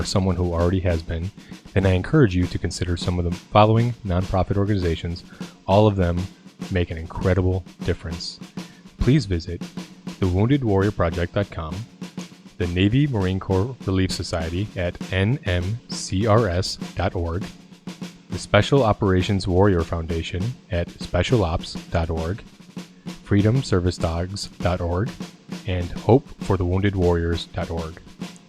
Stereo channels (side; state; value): both; identical; correlation 1.00